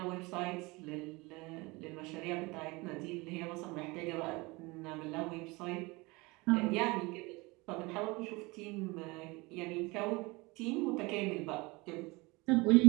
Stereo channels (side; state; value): left; quieter; 24.4 dB